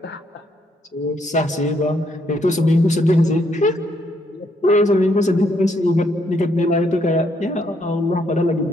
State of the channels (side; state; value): both; normal; correlation 0.73